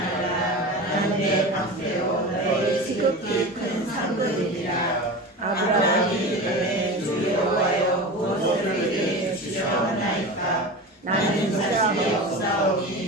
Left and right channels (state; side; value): normal; both; correlation 0.29